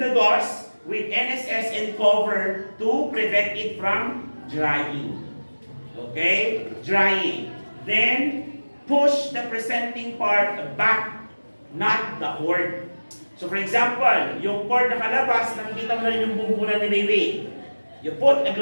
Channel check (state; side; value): inverted; both; correlation -1.00